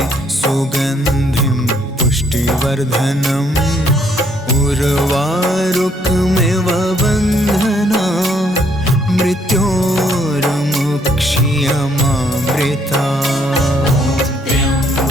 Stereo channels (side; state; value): both; normal; correlation 0.68